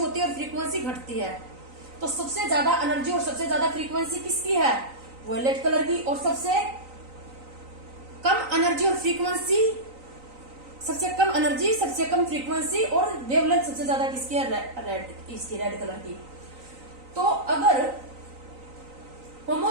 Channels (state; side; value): late; left; 3.9 ms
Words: है और फ्रीक्वेंसी घटती है। तो सबसे ज्यादा एनर्जी और सबसे ज्यादा फ्रीक्वेंसी किसकी है? वॉयलेट कलर की। और सबसे कम एनर्जी और फ्रीक्वेंसी, सबसे कम एनर्जी, सबसे कम फ्रीक्वेंसी और वेवलेंथ सबसे ज्यादा किसकी है? रेड, इसकी रेड कलर की। तो अगर होमो